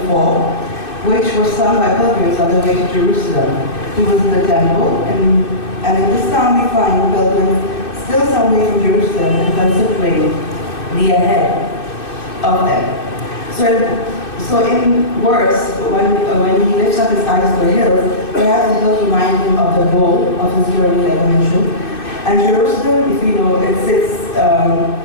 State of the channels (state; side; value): late; right; 2.6 ms